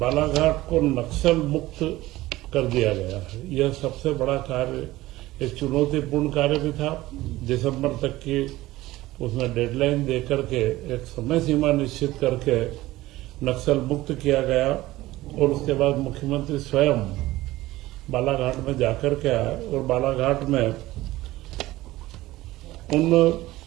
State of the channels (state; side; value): quieter; left; 17.5 dB